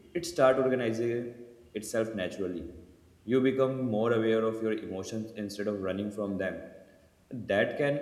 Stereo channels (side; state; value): both; identical; correlation 1.00